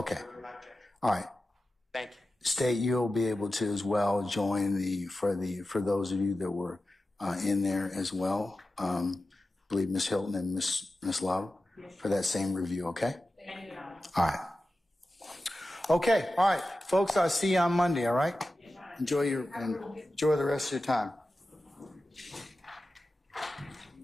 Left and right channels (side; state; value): both; normal; correlation 0.93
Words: All right. Thank you. State, you'll be able to as well join for those of you that were in there as well. I believe Ms. Hilton and Ms. Love for that same review. Okay. Thank you. All right. Okay. All right, folks. I'll see you on Monday. All right. Enjoy the rest of your time.